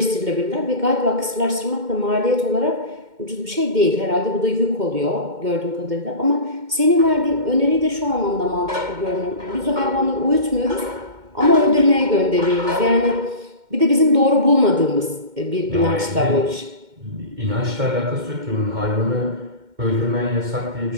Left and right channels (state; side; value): late; left; 2.1 ms